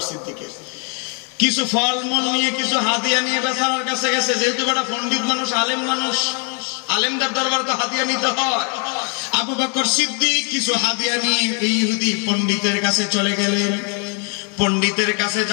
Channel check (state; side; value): quieter; right; 38.3 dB